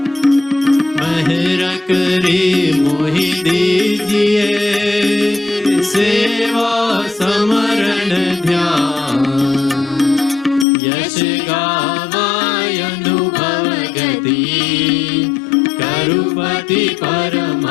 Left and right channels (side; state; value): right; drops out; at 10.7 s